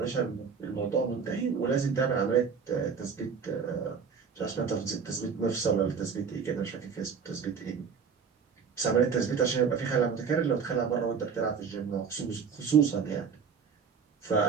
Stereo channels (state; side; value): quieter; left; 6.2 dB